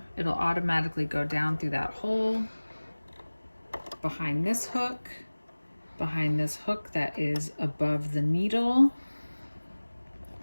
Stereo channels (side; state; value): both; inverted; correlation -1.00